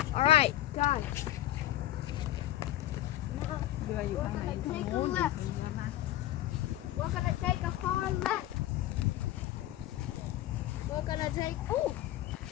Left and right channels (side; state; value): right; quieter; 14.2 dB